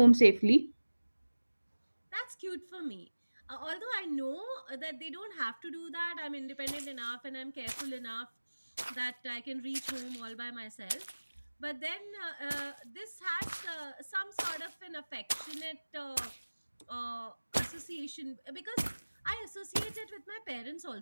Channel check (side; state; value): both; inverted; correlation -1.00